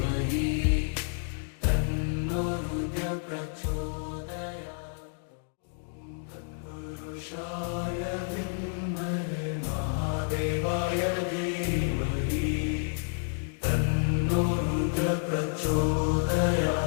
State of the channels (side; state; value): right; silent; digital silence